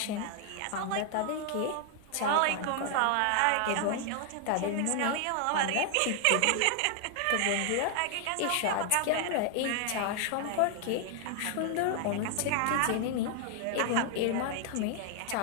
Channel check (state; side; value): different; both; correlation 0.00